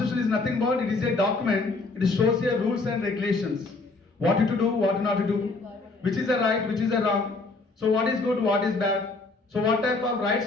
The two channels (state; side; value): quieter; right; 3.6 dB